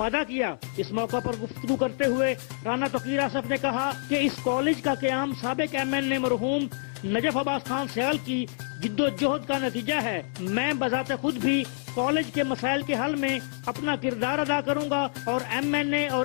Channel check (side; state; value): right; silent; 60 dB below the other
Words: کیا۔ اس موقع پر گفتگو کرتے ہوئے رانا توقیر آصف نے کہا کہ اس کالج کا قیام سابق MN مرحوم نجف عباس خان سیال کی جد و جہد کا نتیجہ ہے۔ میں بذات خود بھی کالج کے مسائل کے حل میں اپنا کردار ادا کروں گا اور MNA اور